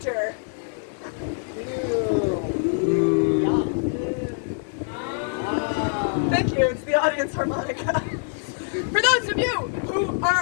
Thank you, it's the Audience Harmonica. For those of you who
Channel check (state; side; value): silent; right; 62 dB below the other